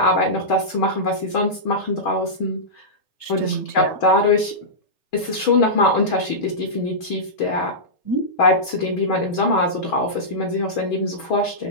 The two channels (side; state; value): right; late; 3.8 ms